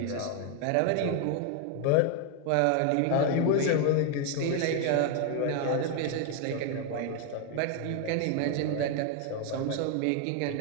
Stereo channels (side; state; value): both; different; correlation 0.01